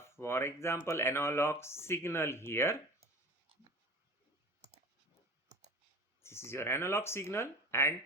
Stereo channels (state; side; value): normal; both; correlation 0.36